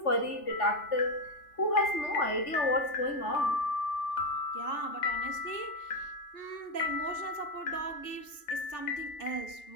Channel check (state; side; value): late; right; 3.3 ms